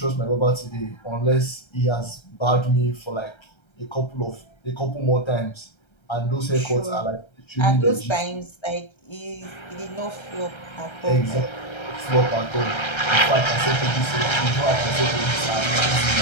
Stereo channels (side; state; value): right; late; 1.3 ms